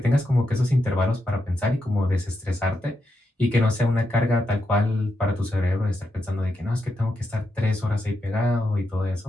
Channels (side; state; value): both; normal; correlation 0.84